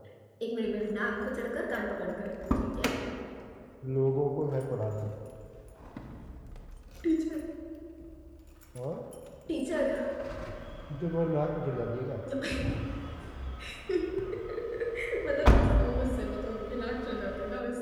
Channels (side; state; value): both; identical; correlation 1.00